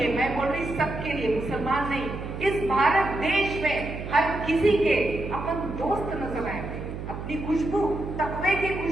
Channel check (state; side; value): noise; right; hum, 8 dB below the sound